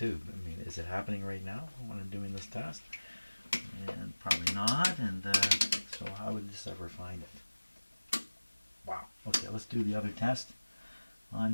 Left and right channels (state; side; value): inverted; both; correlation -1.00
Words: I mean, is it happening right now when I'm doing this test? And probably not. And so how would this ever find it? Wow. Okay, let's do the other test on